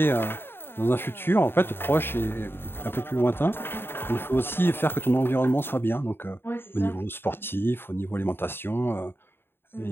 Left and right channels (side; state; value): right; late; 0.11 ms